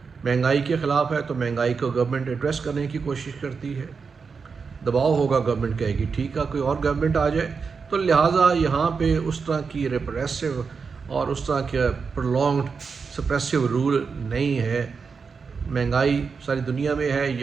مہنگائی کے خلاف ہے تو مہنگائی کو گورنمنٹ ایڈریس کرنے کی کوشش کرتی ہے، دباؤ ہوگا، گورنمنٹ کہے گی ٹھیک ہے کوئی اور گورنمنٹ آ جائے۔ تو لہٰذا یہاں پہ اس طرح کی ریپریسو اور اس طرح کے پرولونگڈ سپریسو رول نہیں ہے، مہنگائی ساری دنیا میں ہے،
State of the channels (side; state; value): left; quieter; 5.3 dB